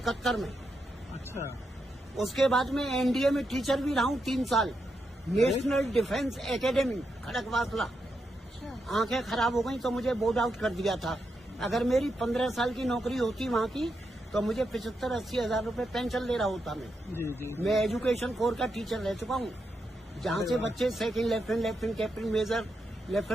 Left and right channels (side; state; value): both; normal; correlation 0.84